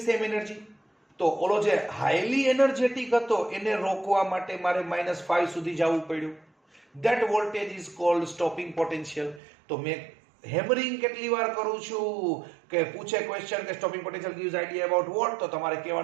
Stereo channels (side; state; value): left; drops out; at 9.4 s